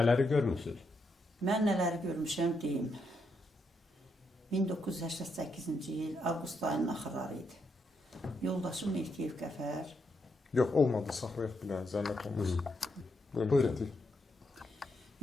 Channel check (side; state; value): both; normal; correlation 0.80